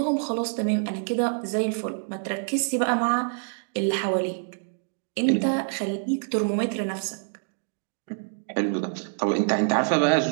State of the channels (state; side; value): silent; left; 59 dB below the other